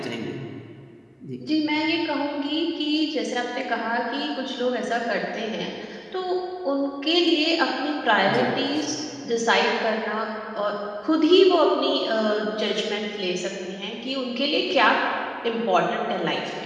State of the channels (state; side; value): identical; both; correlation 1.00